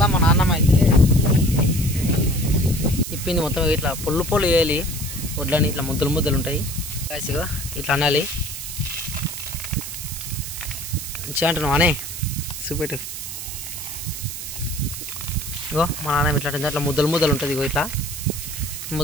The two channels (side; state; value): right; noise; hiss, 8 dB below the sound